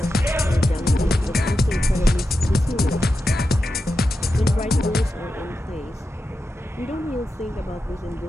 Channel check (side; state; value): both; normal; correlation 0.89